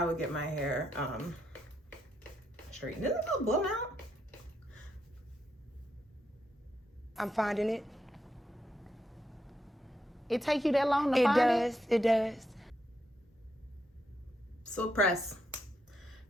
would get my hair straightened, isn't it called blown out? I'm finding it. It take you that long to find it? It does. Silk press.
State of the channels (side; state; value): both; normal; correlation 0.80